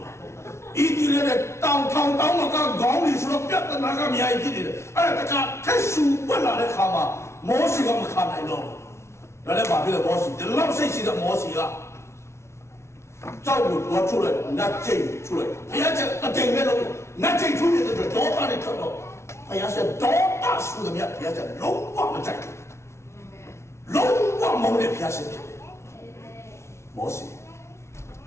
ဤဒီလည်းတောင်းမကခေါင်းကြီးဆိုတော့ပြဿနာကအများကြီးဖြစ်နေတယ်အဲ့ဒါတခါထက်ဆူပွက်လာတဲ့ခါမှာမောရှိကမခါနိုင်တော့ဒါလည်းဘာဖြစ်လဲမောရှိဒီလောက်စိတ်ရှိတဲ့မောရှိကကြောက်လို့တော့ထုတ်လိုက်နတ်ကျိန်ထုတ်လိုက်ဘုရားကအတိမ်ပဲလို့နတ်ကျိန်ထုတ်နေတဲ့တော့ဒေါသနဲ့ထွက်တော့ဘုရားဆက်ဒေါသဆူတယ်မြတ်ဘုရားဆက်လုံးဝမကြိုက်ဘူးလုံးဝမုန်းတဲ့ဘုရားဆက်ဖြစ်တယ်မောရှိ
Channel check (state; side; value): late; right; 0.13 ms